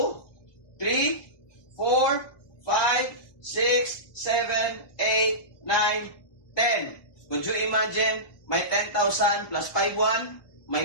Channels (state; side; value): late; right; 1.2 ms